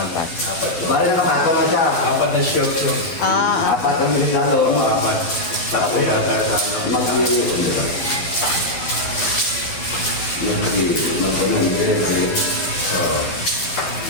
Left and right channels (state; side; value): late; right; 11 ms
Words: Bali na kapata na siya. 4 na shirts yun. Ah, Apat ang bilis lang doon. 4. Tatlo yata sa ano.